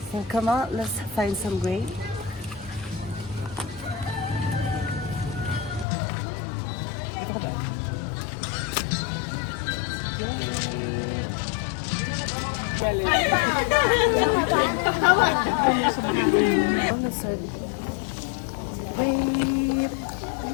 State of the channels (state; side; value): drops out; right; at 5.9 s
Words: So, come on, let's find some grape. Grape.